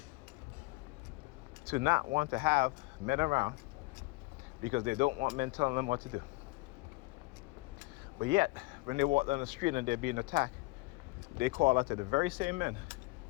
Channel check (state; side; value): quieter; right; 23.2 dB